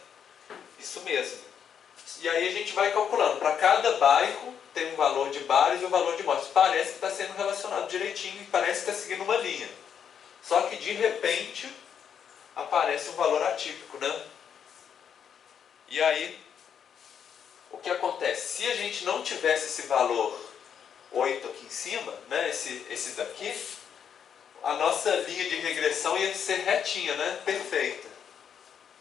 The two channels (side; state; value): right; quieter; 8.0 dB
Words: Isso mesmo. E aí a gente vai calculando. Para cada bairro tem um valor de bares e um valor de mortes. Parece que está sendo relacionado direitinho e parece que está seguindo uma linha. Só que de repente aparece um valor atípico, né? E aí, o que acontece? Se a gente não tivesse esse valor 8 aqui em cima, né? Esse daqui, a nossa linha de regressão ia ser retinha, né? Perfeita.